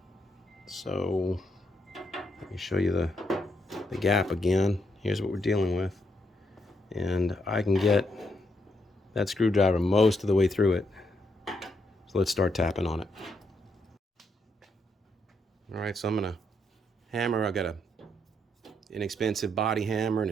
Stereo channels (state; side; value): normal; both; correlation 0.78